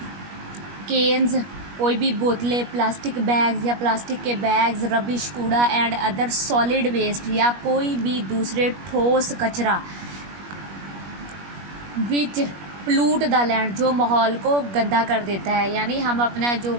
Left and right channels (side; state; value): left; late; 21 ms